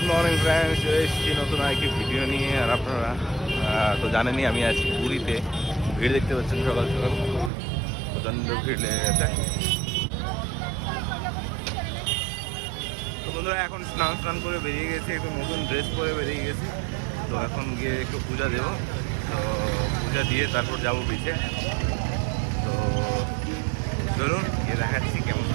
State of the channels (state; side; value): drops out; left; at 7.5 s